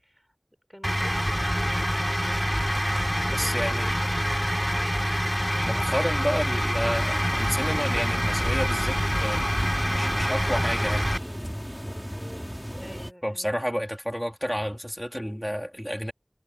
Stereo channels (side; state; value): both; identical; correlation 1.00